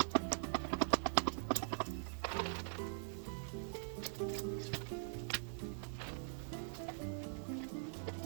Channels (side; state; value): left; silent; digital silence